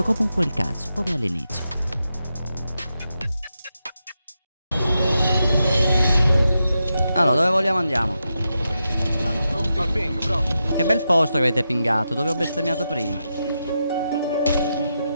comunque il cazzo, come all'inizio. Allora, dove vogliamo andiamo? Al ping, bro. Che bel posto che avete pingato, dove ho bestemmiato prima.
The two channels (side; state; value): both; inverted; correlation -0.87